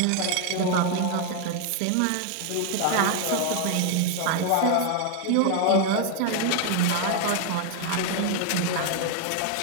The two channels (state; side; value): different; both; correlation 0.01